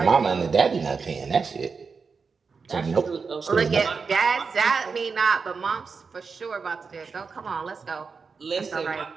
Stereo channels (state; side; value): quieter; left; 5.1 dB